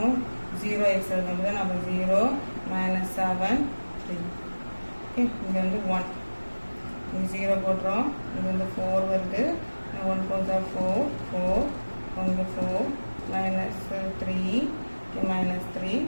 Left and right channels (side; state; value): both; inverted; correlation -1.00